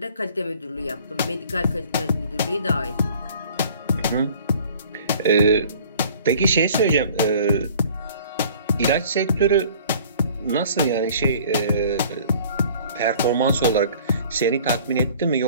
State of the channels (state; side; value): inverted; both; correlation -0.50